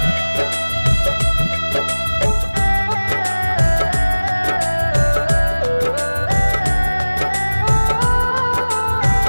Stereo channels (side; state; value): both; inverted; correlation -1.00